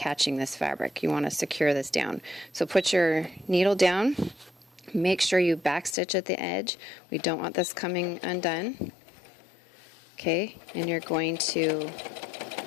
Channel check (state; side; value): drops out; right; at 6.0 s